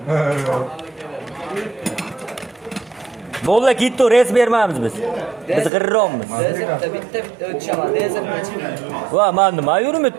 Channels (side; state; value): left; drops out; at 5.7 s